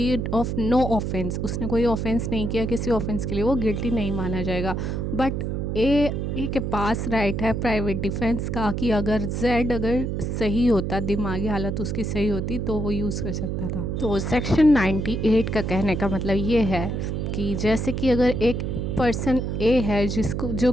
of no offence, उसने कोई ऑफेंस नहीं किया, किसी ऑफेंस के लिए वो गिल्टी नहीं माना जाएगा। बट ए के पास राइट है प्राइवेट डिफेंस का कि अगर अगर सही होता, दिमागी हालत उसकी सही होती तो वो यूज़ कर सकता था। तो सेक्शन 98 का कहने का मतलब ये है कि जैसे कि अगर एक पर्सन ए है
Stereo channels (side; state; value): right; noise; hum, 2 dB below the sound